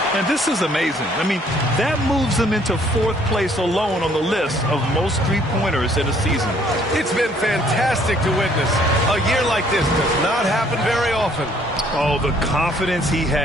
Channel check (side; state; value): both; normal; correlation 0.62